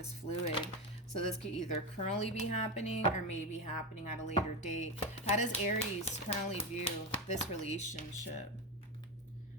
fluid. So this could either currently be happening or maybe happening at a later date. How does Aries currently view this relationship?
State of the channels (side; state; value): both; normal; correlation 0.15